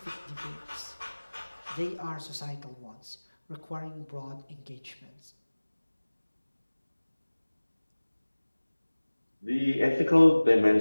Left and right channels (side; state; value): both; inverted; correlation -1.00